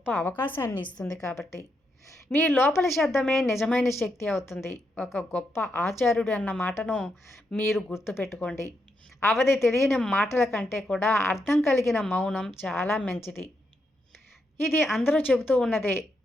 అవకాశాన్ని ఇస్తుంది కాబట్టి. మీ లోపలి శబ్దమే నిజమైన శక్తి అవుతుంది. ఒక గొప్ప ఆచార్యుడు అన్న మాటను మీరు గుర్తుపెట్టుకోండి. అవధి తెలియని మాటల కంటే కూడా అర్థం కలిగిన మౌనం చాలా మంచిది. ఇది అందరూ చెబుతూ ఉన్నదే,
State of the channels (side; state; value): both; normal; correlation 0.82